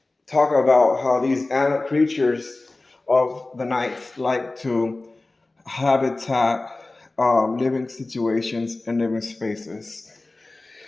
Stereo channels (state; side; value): quieter; right; 3.1 dB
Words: talk about how these animal creatures of the night like to habitat, living situations, and living spaces.